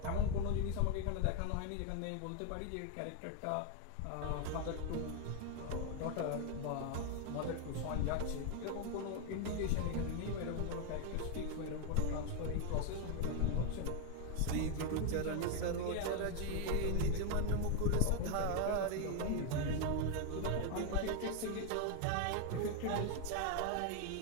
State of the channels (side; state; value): both; different; correlation 0.01